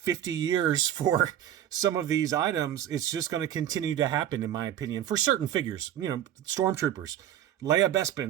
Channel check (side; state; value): left; quieter; 10.9 dB